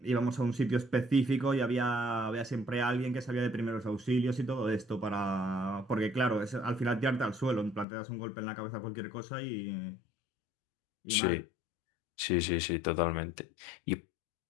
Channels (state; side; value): drops out; right; at 7.9 s